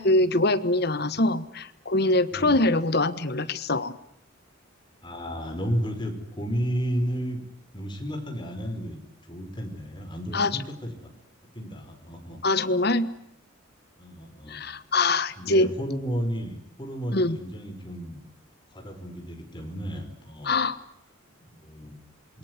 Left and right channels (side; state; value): both; normal; correlation 0.22